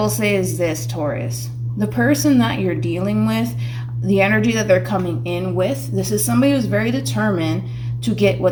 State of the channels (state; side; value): identical; both; correlation 1.00